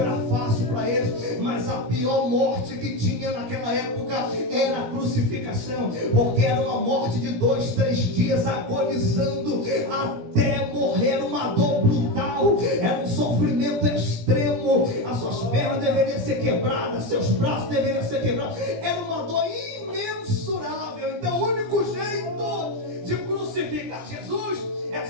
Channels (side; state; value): left; late; 17 ms